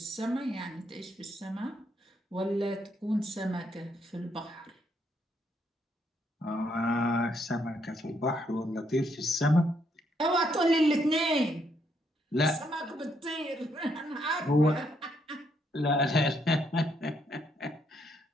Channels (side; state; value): both; normal; correlation 0.74